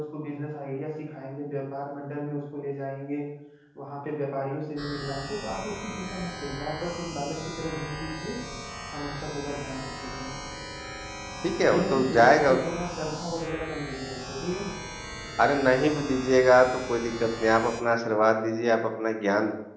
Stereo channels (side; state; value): both; identical; correlation 1.00